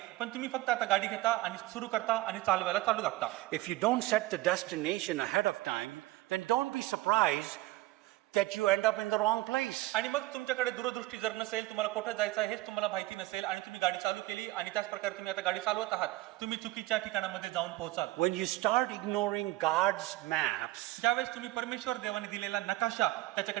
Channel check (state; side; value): quieter; left; 18.3 dB